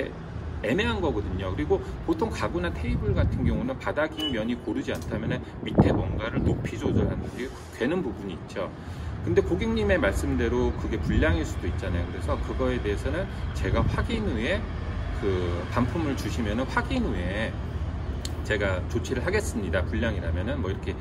애매한 거거든요. 그리고 보통 가구나 테이블 같은 경우는 바닥인 면이 고르지 않다면 밑에 뭔가를 높이 조절하는 게 되는 부분이 있죠. 근데 고객님의 말씀대로 그게 불량일 수도 있잖아요. 그래서 그거에 대해서는 제가 확인 후에 그 반품을 주시면은 확인 후에 제가 조치를 하겠습니다, 불량이라면은 뭐 이렇게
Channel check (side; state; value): both; identical; correlation 1.00